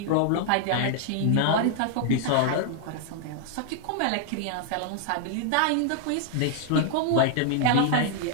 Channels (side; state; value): both; different; correlation -0.01